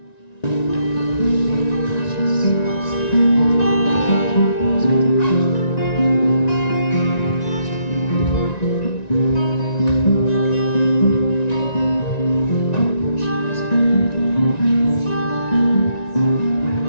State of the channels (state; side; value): late; right; 1.9 ms